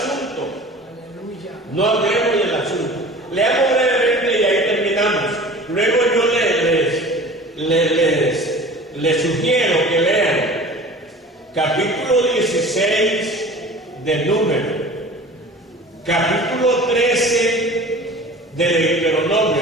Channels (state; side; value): normal; both; correlation 0.41